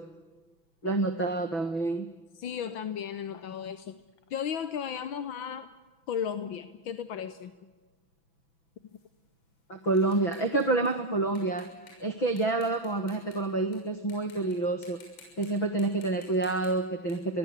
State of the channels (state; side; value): late; right; 6.0 ms